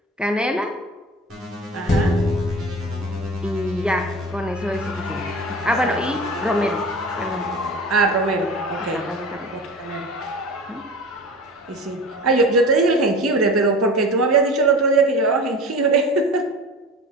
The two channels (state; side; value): normal; both; correlation 0.35